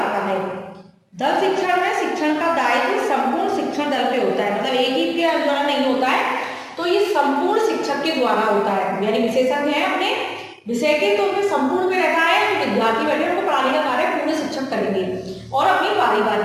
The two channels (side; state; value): both; identical; correlation 1.00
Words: है। दल शिक्षण में शिक्षण का दायित्व संपूर्ण शिक्षण दल पे होता है, मतलब एक ही के द्वारा नहीं होता है, तो ये संपूर्ण शिक्षक के द्वारा होता है। यानी विशेषज्ञ है अपने विषय के, तो उनमें संपूर्ण में रहता है, विद्यार्थी बैठे उनको पढ़ाने का कार्य पूरे शिक्षक करेंगे और अपनी